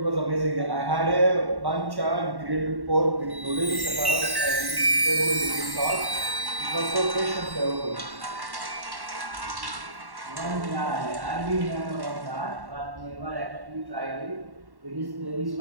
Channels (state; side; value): late; left; 1.1 ms